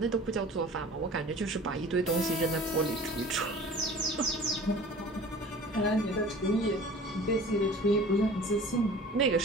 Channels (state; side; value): normal; both; correlation 0.43